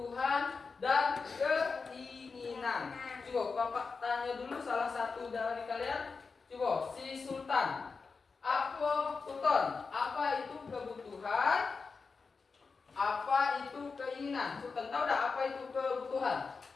dan keinginan. Coba Bapak tanya dulu salah satu dari kalian. Coba si Sultan. Apa Sultan? Apa itu kebutuhan? Apa itu keinginan? Sultan tahu dah apa itu kebutuhan?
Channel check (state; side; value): quieter; right; 4.7 dB